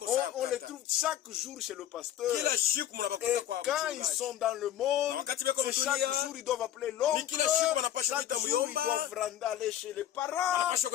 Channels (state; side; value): quieter; right; 11.7 dB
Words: On les sana. trouve chaque jour chez le pasteur. Kila siku mnabakuta Et kwa quand ils mchungaji. sont dans le monde, Na wakati beko c'est mdunia, chaque jour ils doivent appeler l'oncle. ni kila siku wanapaswa Chaque kuita jour ils muyomba. doivent aller chez les parents. Wanapaswa